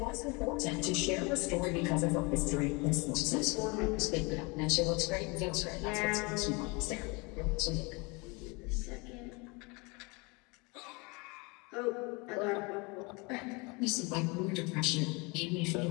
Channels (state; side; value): quieter; right; 28.2 dB